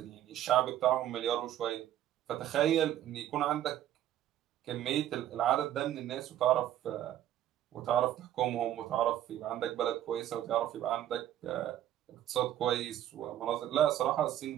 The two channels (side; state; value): left; quieter; 12.0 dB